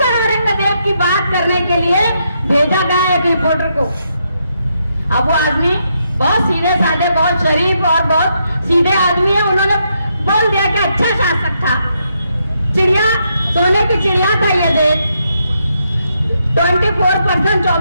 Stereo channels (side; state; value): both; inverted; correlation -0.79